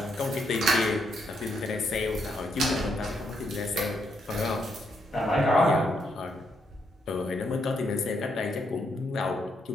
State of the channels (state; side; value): normal; both; correlation 0.78